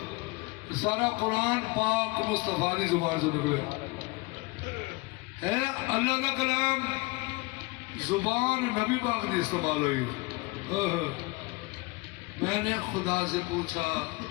سارا قرآن پاک مصطفیٰ دی زبان سے نکلے ہے، اللہ دا کلام زبان نبی پاک دی استعمال ہوئی۔ میں نے خدا سے پوچھا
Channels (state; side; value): quieter; right; 25.0 dB